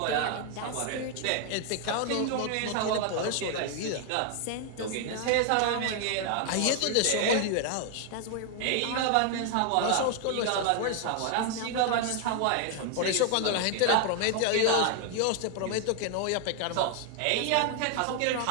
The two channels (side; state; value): both; different; correlation 0.00